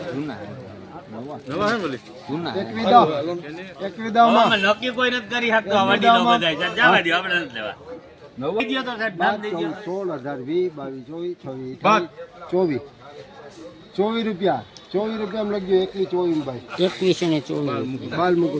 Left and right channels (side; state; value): both; identical; correlation 1.00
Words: જૂના નક્કી કોઈ નથી કરી શકતો આ વાડી નો બધાય જવા દો આપણે નથી લેવા નવા દીયો તો સાહેબ નામ દઈ દો 16 18 20 22 રૂપિયા 24 રૂપિયા લખજો 21 ભાઈ 21 ને 24 બાલ